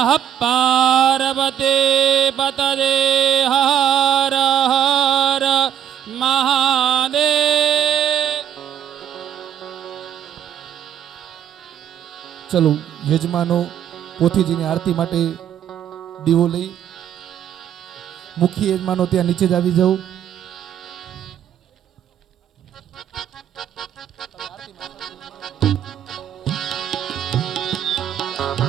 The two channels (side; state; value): left; quieter; 9.8 dB